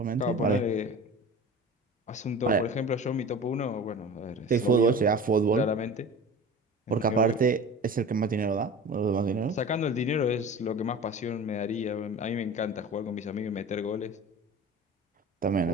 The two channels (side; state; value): both; normal; correlation 0.37